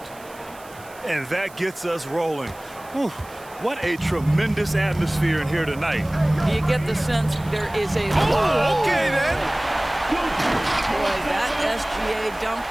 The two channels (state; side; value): noise; right; hiss, 22 dB below the sound